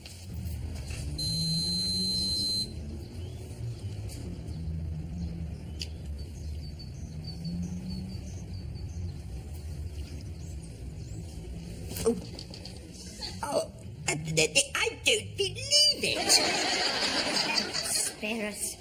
I don't believe it. Spare us.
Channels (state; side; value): identical; both; correlation 1.00